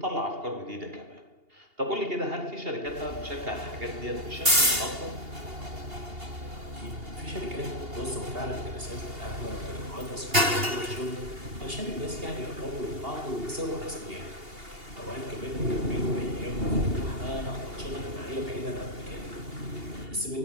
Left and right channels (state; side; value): late; left; 2.8 ms